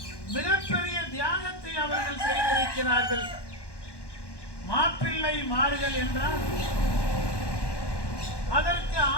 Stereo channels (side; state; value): right; late; 1.1 ms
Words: மிகப்பெரிய தியாகத்தை அவர்கள் செய்திருக்கிறார்கள். மாப்பிள்ளை மார்கள் என்றால் அதற்கு